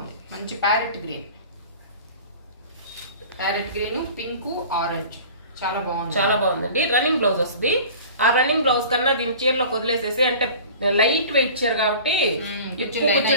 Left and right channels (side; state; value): both; inverted; correlation -0.42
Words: మంచి ప్యారెట్ గ్రీన్, పింక్, ఆరెంజ్ చాలా బాగుంది. చాలా బాగుందండి. రన్నింగ్ బ్లౌజ్ వస్తుంది. ఆ రన్నింగ్ బ్లౌజ్ కన్నా దీని చీరలో వదిలేసేసి, అంటే లైట్ వెయిట్ చీర కాబట్టి